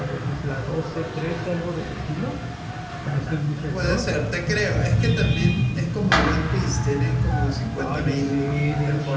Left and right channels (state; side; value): identical; both; correlation 1.00